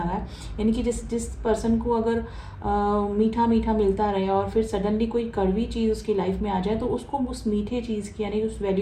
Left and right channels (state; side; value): identical; both; correlation 1.00